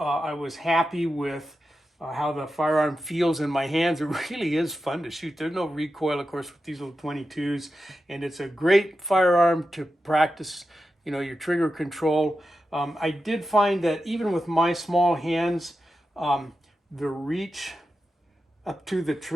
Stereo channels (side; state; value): both; normal; correlation 0.90